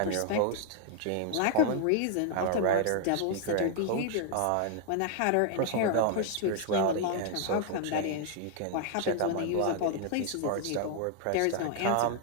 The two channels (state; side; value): different; both; correlation -0.01